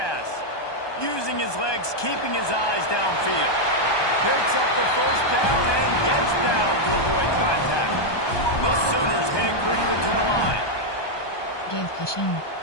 Using his legs, keeping his eyes downfield. Picks up the first down and gets down to avoid contact. The Sooners heading quickly to the line. Give cushion.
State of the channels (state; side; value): late; right; 1.2 ms